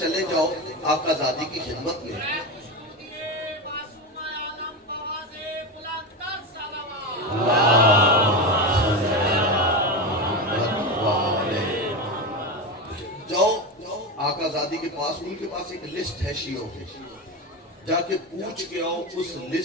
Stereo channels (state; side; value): normal; both; correlation 0.18